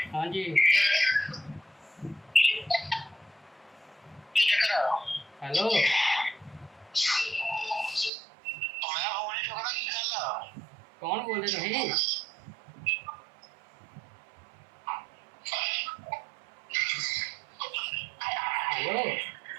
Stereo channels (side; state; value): left; drops out; at 8.1 s